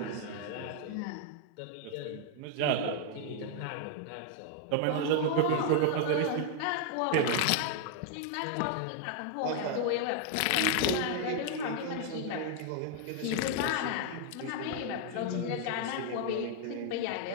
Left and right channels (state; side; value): different; both; correlation 0.00